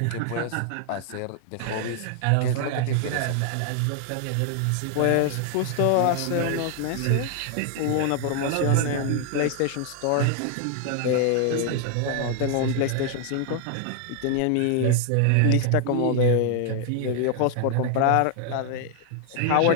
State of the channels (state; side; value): different; both; correlation 0.00